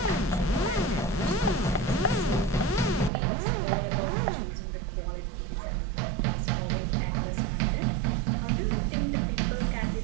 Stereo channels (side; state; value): left; drops out; at 3.1 s